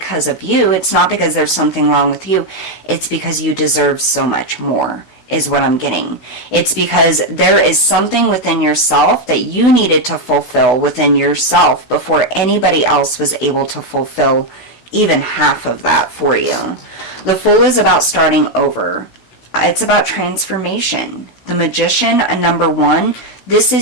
of you. It's not because there's something wrong with you. It's because you deserve so much more, is what I'm getting. It's because there is something within yourself that you needed to fulfill within yourself before anybody else was able to fulfill even half of that for you. The Fool is about starting over. It's about transformation. The Magician, a number 1, this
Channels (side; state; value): right; late; 16 ms